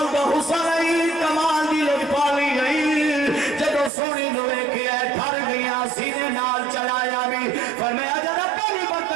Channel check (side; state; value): left; drops out; at 3.9 s